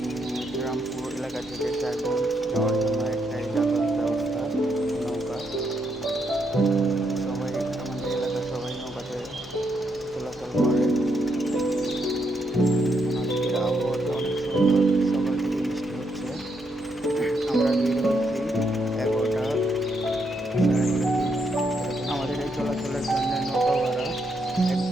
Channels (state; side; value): normal; both; correlation 0.78